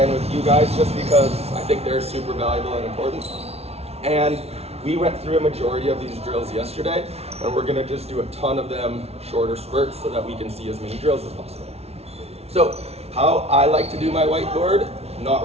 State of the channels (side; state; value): left; late; 0.30 ms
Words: with you guys just because I think they're super valuable and important. And we went through a majority of these drills yesterday, and we're gonna just do a ton of them, shorter spurts, so that we can see as many drills as possible. So how I like to do my whiteboard, not